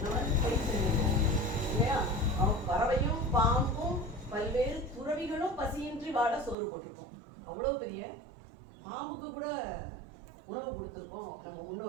நம்ம பயிர் செய்யணும் இல்லையா? பறவையும் பாம்பும் பல்வேறு துறவிகளும் பசியின்றி வாழ சோறு போட்டிருக்கோம். அவ்வளவு பெரிய பாம்புக்கு கூட உணவு கொடுத்துருக்கோம் நம்ம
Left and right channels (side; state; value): left; drops out; at 6.6 s